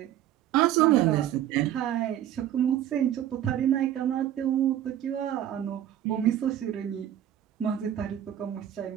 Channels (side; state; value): left; quieter; 11.4 dB